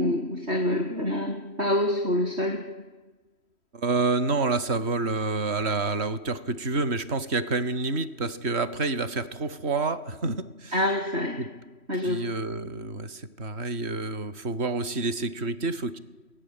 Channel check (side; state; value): left; late; 3.1 ms